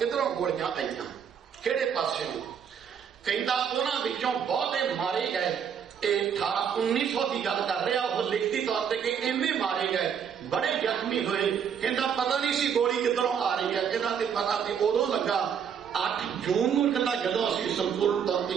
गोलियां आईयां किहड़े पासेों। कहता उन्हां विचों बहुते मारे गए। 1900 की गल कर रहा, वो लिखती तौर पर कि इन्ने मारे गए, बड़े जख्मी हुए। कहता पता नहीं सी गोली किधरों आ रही है। कहता पता तो उदों लगा 8 जून को। कहता जदों असीं संपूर्ण तौर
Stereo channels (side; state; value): left; quieter; 7.7 dB